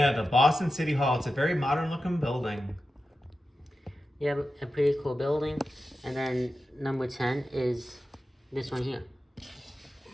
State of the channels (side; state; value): both; normal; correlation 0.92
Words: the Boston City Hall. It's a very modern looking building. Yeah, a pretty cool building. And then number 10 is this one here.